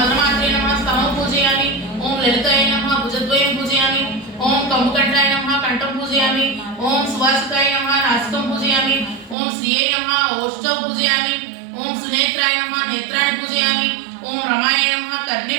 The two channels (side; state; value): left; drops out; at 9.3 s